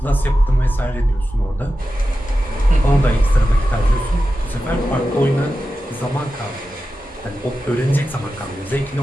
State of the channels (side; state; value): both; normal; correlation 0.92